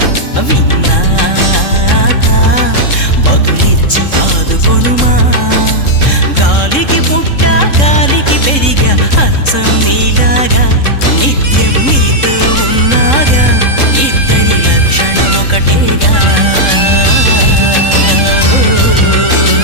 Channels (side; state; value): right; late; 3.7 ms